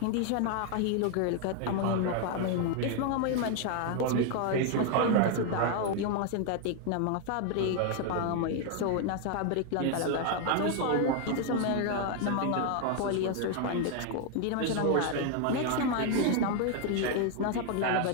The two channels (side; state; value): both; different; correlation 0.00